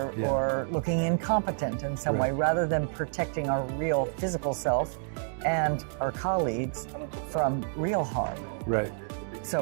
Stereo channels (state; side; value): silent; left; digital silence